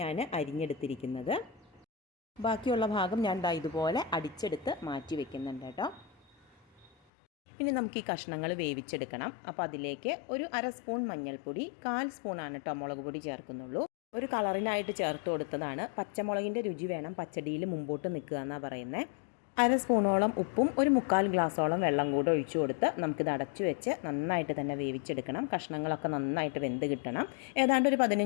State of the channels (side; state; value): right; drops out; at 6.9 s